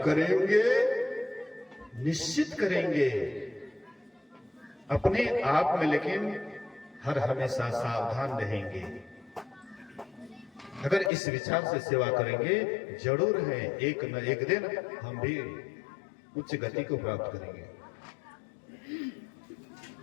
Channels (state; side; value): drops out; right; at 11.1 s